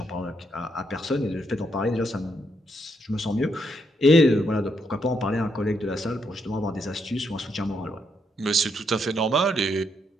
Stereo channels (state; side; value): normal; both; correlation 0.77